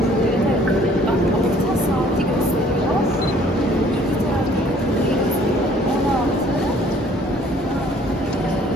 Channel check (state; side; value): normal; both; correlation 0.57